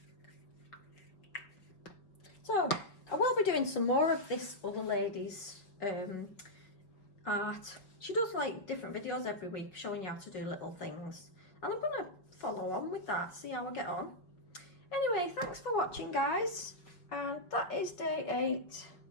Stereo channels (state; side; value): late; right; 5.1 ms